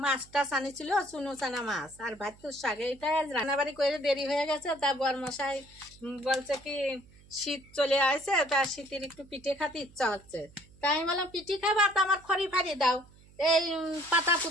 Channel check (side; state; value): right; noise; hum, 25 dB below the sound